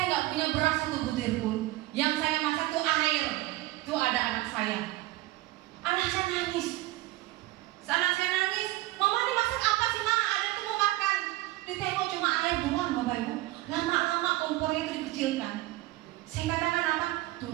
nggak punya beras 1 butir pun. Yang saya masak itu air. Itu ada anak saya. Anak saya nangis. Anak saya nangis. Mama ini masak apa sih Ma? Ada itu mau makan. Ditengok cuma air doang Bapak Ibu. Lama-lama kompornya itu dikecilkan. Saya katakan apa?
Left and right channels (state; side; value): quieter; left; 18.1 dB